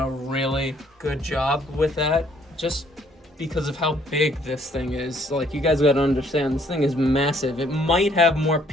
really good job with that, just because of how big this thing is. Like, you guys gotta understand, this thing is massive. It might have more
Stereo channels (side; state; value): both; normal; correlation 0.64